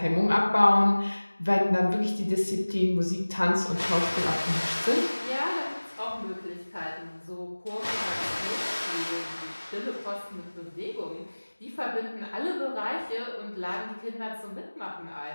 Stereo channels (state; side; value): inverted; both; correlation -1.00